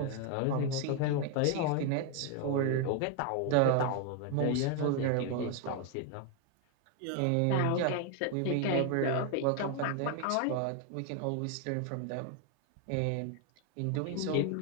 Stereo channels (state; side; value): different; both; correlation 0.01